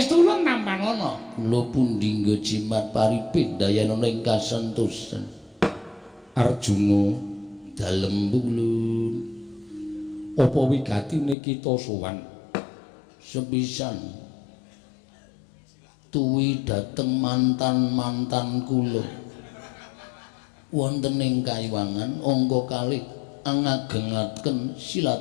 ulun tampanana kula pun dinggo jimat paripit dayanana ing kasantosan Arjuna dalem pukulun apa wigatine kita sowan sepisan tuwi dhateng mantan-mantan kula wonten ing Kayuwangan angka kalih ngagengaken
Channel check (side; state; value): right; drops out; at 11.4 s